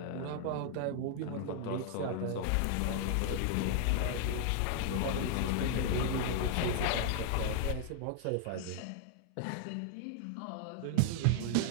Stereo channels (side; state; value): both; different; correlation 0.00